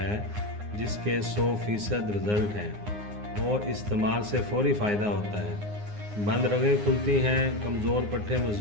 जिसके 100% रिज़ल्ट हैं और इस्तेमाल से फौरी फ़ायदा होता है। बंद रगें खुलती हैं, कमज़ोर पट्टे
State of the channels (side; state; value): left; late; 9.6 ms